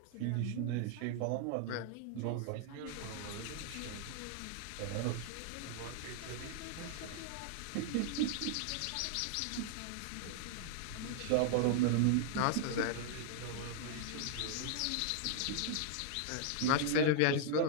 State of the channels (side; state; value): both; different; correlation 0.00